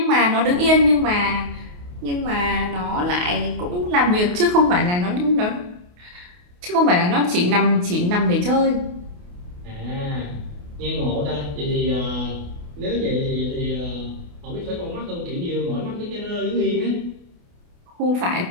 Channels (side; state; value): left; late; 28 ms